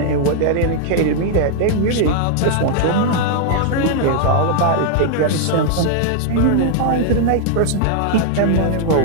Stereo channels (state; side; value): different; both; correlation -0.01